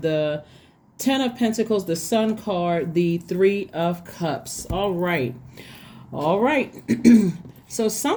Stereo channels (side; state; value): both; identical; correlation 1.00